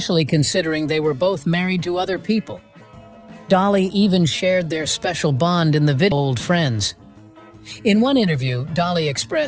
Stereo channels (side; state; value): both; identical; correlation 1.00